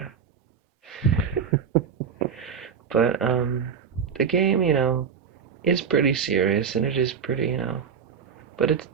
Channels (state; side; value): quieter; left; 6.8 dB